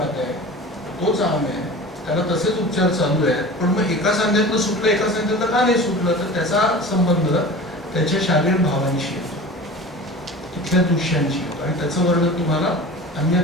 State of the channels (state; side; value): normal; both; correlation 0.36